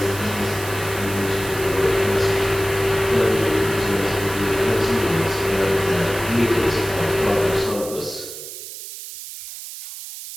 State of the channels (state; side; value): noise; right; hiss, 11 dB below the sound